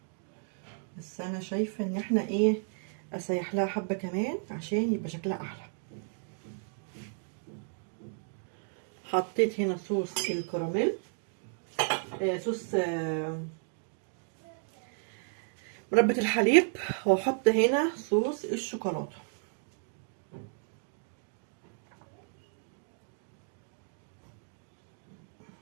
بس انا شايفه ان احنا ايه، اسيح لها حبه كمان عشان يبقى شكلها احلى. حطيت هنا صوص الكراميل، صوص مربى الحليب، واحط هنا صوص الشوكولاته.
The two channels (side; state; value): left; silent; 56 dB below the other